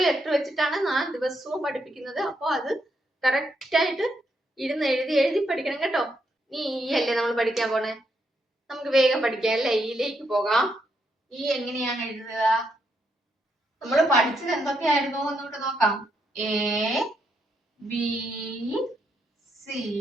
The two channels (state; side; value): normal; both; correlation 0.79